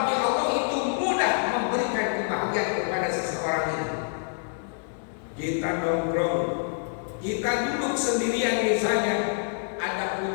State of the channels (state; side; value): silent; right; digital silence